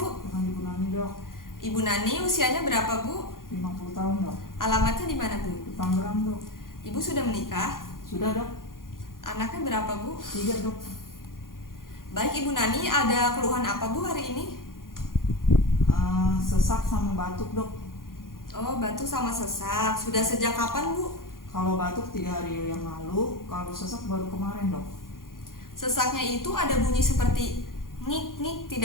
Dengan Ibu Nani dok. Ibu Nani, usianya berapa Bu? 50 tahun dok. Alamatnya di mana Bu? Di Tangerang dok. Ibu sudah menikah? Sudah dok. Anaknya berapa Bu? 3 dok. Baik Ibu Nani, ada keluhan apa Bu hari ini? Sesak sama batuk dok. Oh, batuk sama sesak. Sudah sejak kapan Bu? Kalau batuk 3 hari yang lalu, kalau sesak baru kemarin dok. Sesaknya itu ada bunyi seperti ngik-ngik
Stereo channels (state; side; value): late; right; 0.91 ms